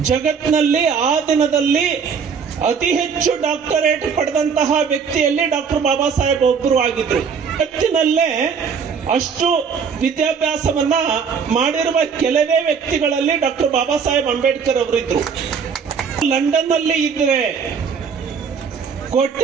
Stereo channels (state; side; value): quieter; left; 6.3 dB